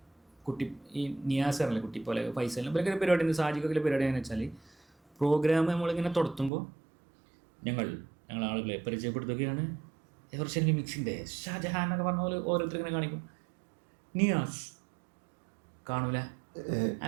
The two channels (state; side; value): drops out; left; at 6.5 s